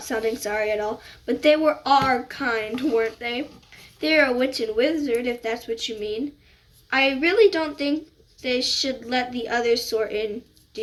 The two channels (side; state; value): both; identical; correlation 1.00